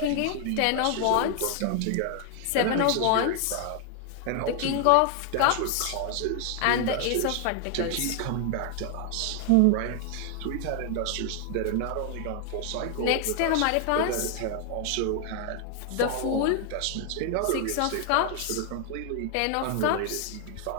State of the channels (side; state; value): both; different; correlation 0.00